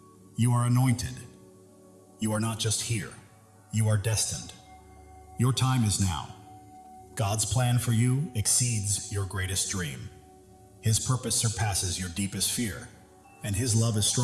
you are anointed. You are not just here, you are destined. Your time is now. God's plan for you exceeds your greatest dream. His purpose surpasses your deepest fear, and His love is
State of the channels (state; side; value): identical; both; correlation 1.00